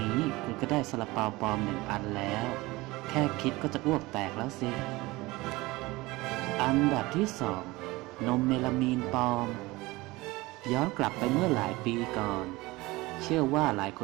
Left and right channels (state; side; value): quieter; left; 21.1 dB